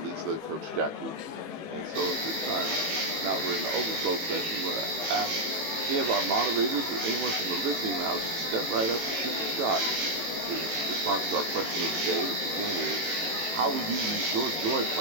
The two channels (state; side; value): late; left; 18 ms